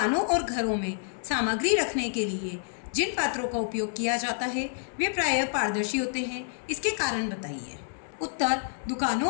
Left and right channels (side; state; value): right; silent; digital silence